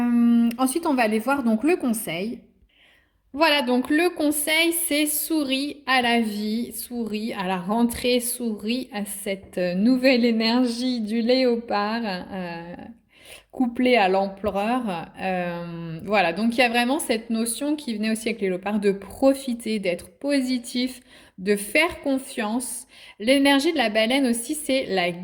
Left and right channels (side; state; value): both; identical; correlation 1.00